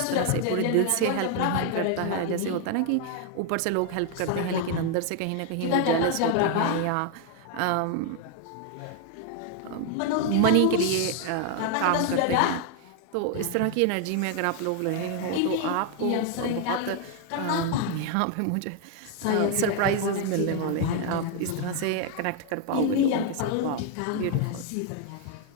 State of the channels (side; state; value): both; different; correlation 0.00